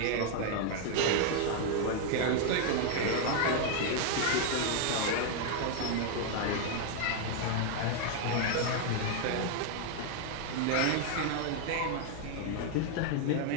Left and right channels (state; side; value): different; both; correlation 0.00